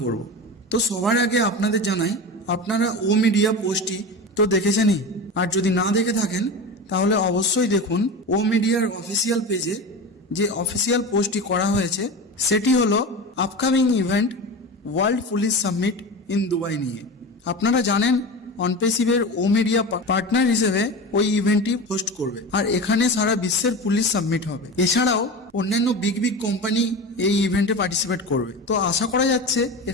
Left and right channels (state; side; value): normal; both; correlation 0.28